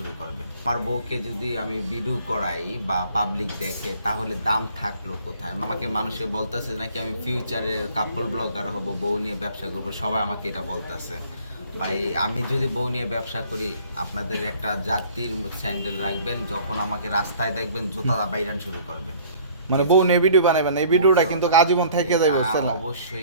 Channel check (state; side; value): inverted; both; correlation -0.53